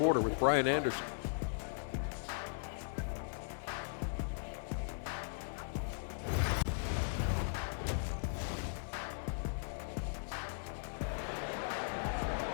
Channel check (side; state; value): right; silent; digital silence